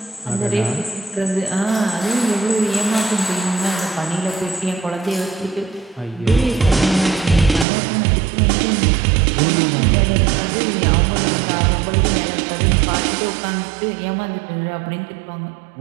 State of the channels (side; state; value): left; drops out; at 7.7 s